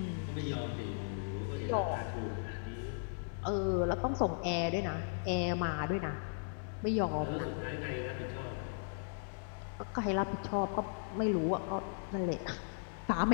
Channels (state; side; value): silent; right; 53 dB below the other